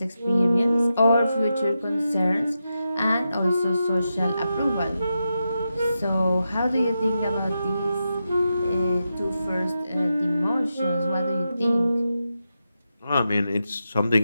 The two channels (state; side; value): inverted; both; correlation -0.88